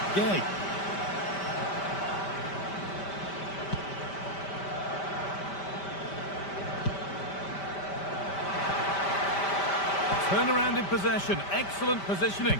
Gay. Turnaround in possession, excellent positioning.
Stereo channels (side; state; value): right; late; 5.1 ms